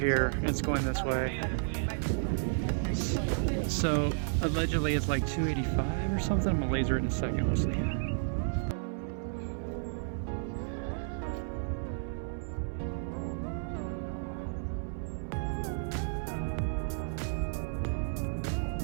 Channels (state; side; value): silent; left; 56 dB below the other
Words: It's going this way. So allegedly it's like 285 or something. I'm gonna laser it in a second. We'll see.